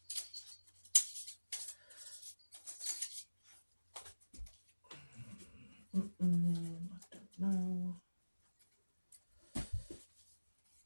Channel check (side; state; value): both; inverted; correlation -1.00